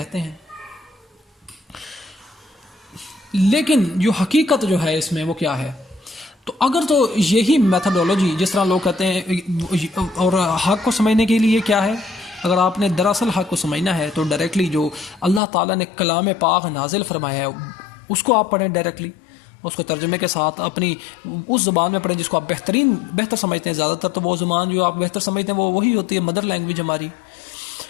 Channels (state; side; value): drops out; right; at 15.4 s